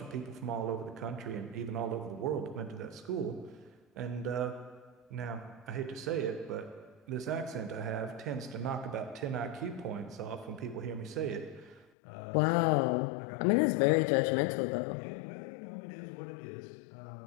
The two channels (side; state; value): right; drops out; at 11.9 s